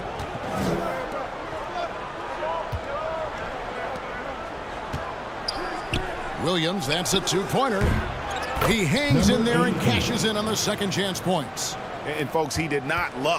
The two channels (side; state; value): both; identical; correlation 1.00